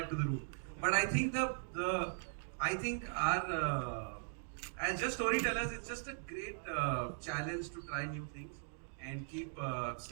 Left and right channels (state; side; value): silent; left; digital silence